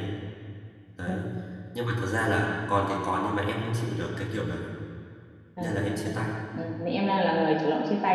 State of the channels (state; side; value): identical; both; correlation 1.00